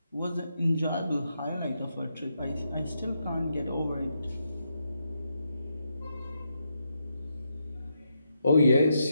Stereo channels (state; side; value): inverted; both; correlation -0.82